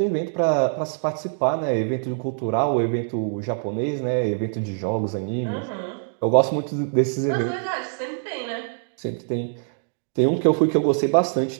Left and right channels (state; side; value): silent; left; digital silence